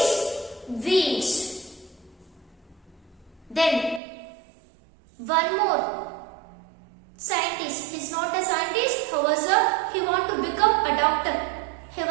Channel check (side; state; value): left; drops out; at 4.0 s